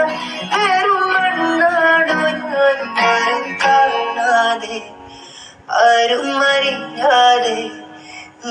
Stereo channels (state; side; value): identical; both; correlation 1.00